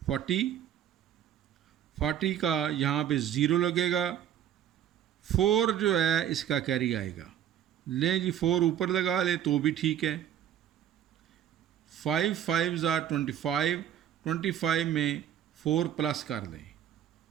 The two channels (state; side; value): quieter; left; 10.3 dB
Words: 40, 40 का यहाँ पे ज़ीरो लगेगा, 4 जो है इसका कैरी आएगा। लें जी, 4 ऊपर लगा ले तो भी ठीक है। 5 5 ज़ार 25, 25 में 4 प्लस कर दें।